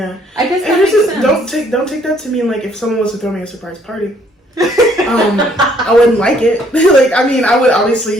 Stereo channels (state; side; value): normal; both; correlation 0.64